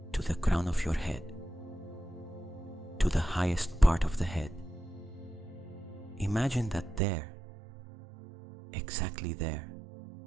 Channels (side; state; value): left; drops out; at 7.0 s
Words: to the crown of your head, to the highest part of the head. Imagine that there, exactly there